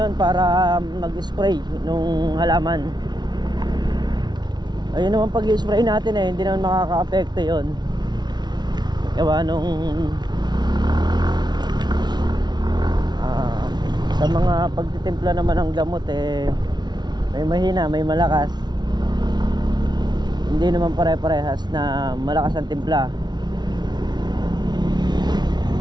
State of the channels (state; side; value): late; left; 0.20 ms